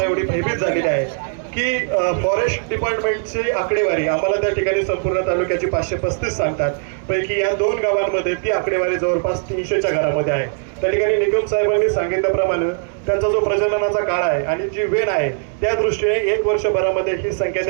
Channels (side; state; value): left; silent; digital silence